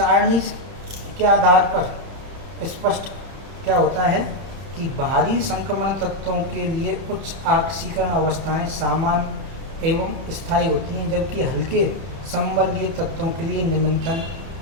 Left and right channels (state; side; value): late; left; 31 ms